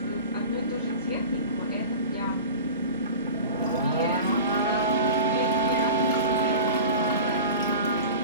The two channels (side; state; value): both; inverted; correlation -0.34